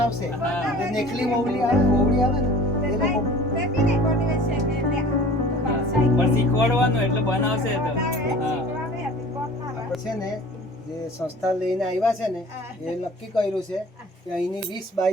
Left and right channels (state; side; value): normal; both; correlation 0.45